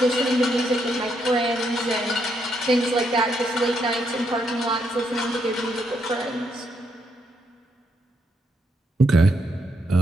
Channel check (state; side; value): normal; both; correlation 0.77